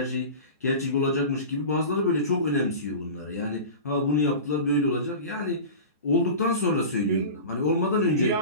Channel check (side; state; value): both; inverted; correlation -0.32